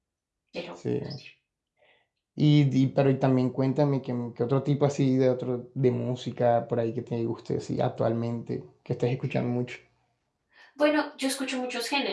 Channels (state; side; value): identical; both; correlation 1.00